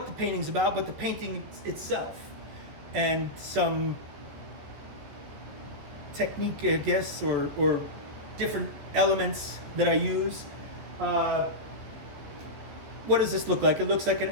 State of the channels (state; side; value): late; left; 14 ms